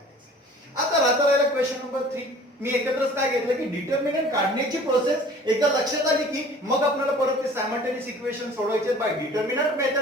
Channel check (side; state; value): both; normal; correlation 0.47